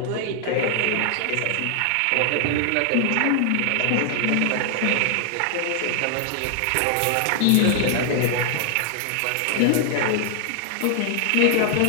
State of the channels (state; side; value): different; both; correlation 0.00